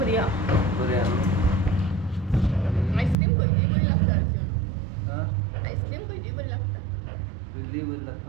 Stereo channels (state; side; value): drops out; left; at 3.2 s